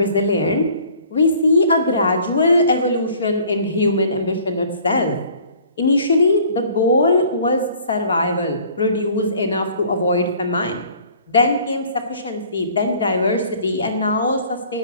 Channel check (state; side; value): inverted; both; correlation -0.53